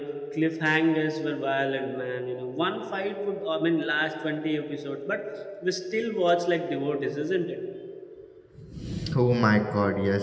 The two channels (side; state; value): both; identical; correlation 1.00